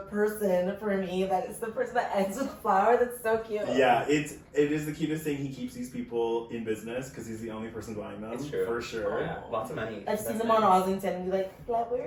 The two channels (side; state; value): both; identical; correlation 1.00